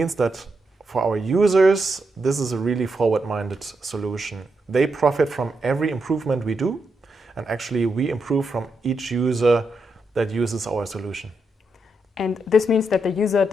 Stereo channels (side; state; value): both; normal; correlation 0.83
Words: that for our users, this is a really forward-minded solution. They profit from every improvement we do, and actually we improve from each user that uses our solution. And this means that the user